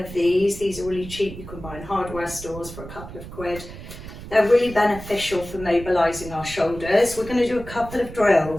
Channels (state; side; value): noise; right; rumble, 13 dB below the sound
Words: these are really cheap. You can buy in hardware stores for a couple of quid. They're really beneficial for mobilising our shoulders. We're going to do a couple of